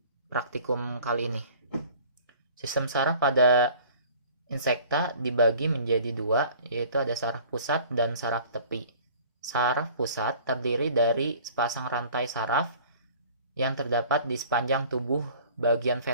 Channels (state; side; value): inverted; both; correlation -0.48